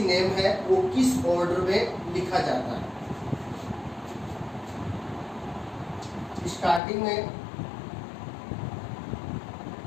नेम है वो किस ऑर्डर में लिखा जाता है. स्टार्टिंग में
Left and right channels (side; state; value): right; drops out; at 6.8 s